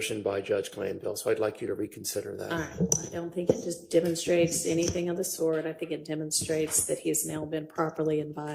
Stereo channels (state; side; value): identical; both; correlation 1.00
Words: by Judge Glanville. So I'd like you to reconsider that. All right, I don't think it just demonstrates anything of the sort. I think it demonstrates that he's now been properly